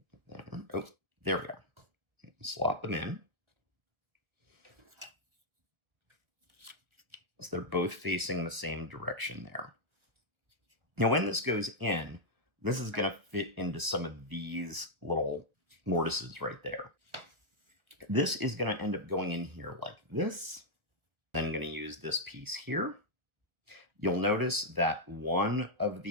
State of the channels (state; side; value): late; left; 1.6 ms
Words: Oh, there we go. Slot them in. So they're both facing the same direction there. Now, when this goes in, this is going to fit into some of these little mortises right there. This is going to end up going in here like this. Then I'm going to use this piece here. You'll notice that one of